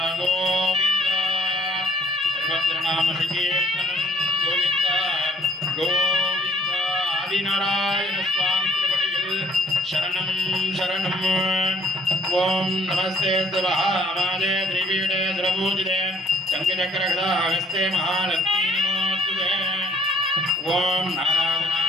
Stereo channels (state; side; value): normal; both; correlation 0.59